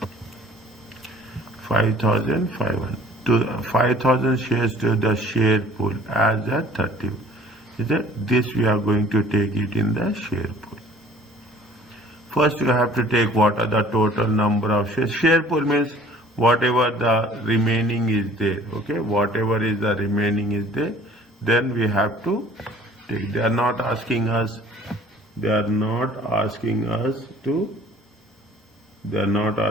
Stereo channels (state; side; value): normal; both; correlation 0.53